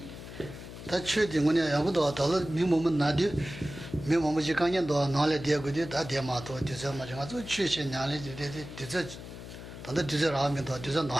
다 최대 뭐냐 야부도 달로 미몸은 나디 미몸은 지간년도 나래 되고도 다 대마도 되서 맞아 저 최신 냐래 되되 되서 단다 되서 라면도 되서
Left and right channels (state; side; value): noise; left; hum, 12 dB below the sound